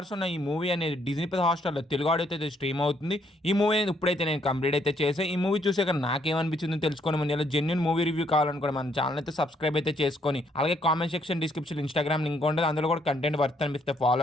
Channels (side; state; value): both; normal; correlation 0.70